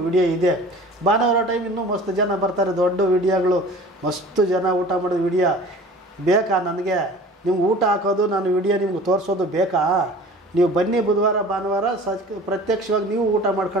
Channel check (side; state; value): both; normal; correlation 0.43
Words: ವಿಡಿಯೋ ಇದೆ. ಭಾನುವಾರ ಟೈಮ್ ಇನ್ನೂ ಮಸ್ತ್ ಜನ ಬರ್ತಾರೆ, ದೊಡ್ಡ ವಿಡಿಯೋಗಳು, ಮಸ್ತ್ ಜನ ಊಟ ಮಾಡೋದು ವಿಡಿಯೋ ಬೇಕಾ ನನಗೆ? ನಿಮ್ಗೆ ಊಟ ಹಾಕೋದು, ನಾನು ವಿಡಿಯೋ ನಿಮ್ಗೆ ತೋರಿಸೋದು ಬೇಕಾ? ನೀವು ಬನ್ನಿ ಬುಧವಾರ ಭಾನುವಾರ ಪ್ರತ್ಯಕ್ಷವಾಗಿ ನೀವು ಊಟ